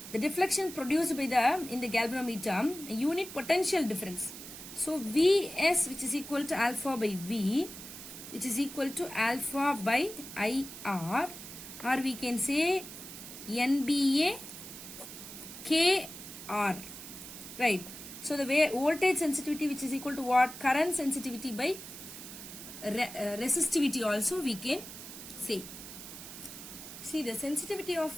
the deflection produced by in the galvanometer, a unit potential difference. So Vs, which is equal to alpha by V, which is equal to alpha by IR, or we can say NBA KR, right? So the voltage sensitivity, which is equal to what? Current sensitivity by resistivity also we can say. See, the sensitivity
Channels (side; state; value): right; noise; hiss, 12 dB below the sound